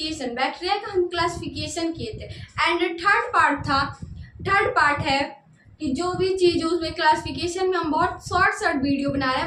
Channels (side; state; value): both; identical; correlation 1.00